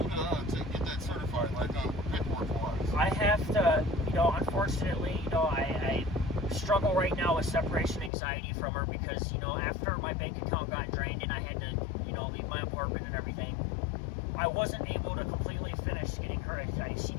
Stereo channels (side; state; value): right; drops out; at 8.1 s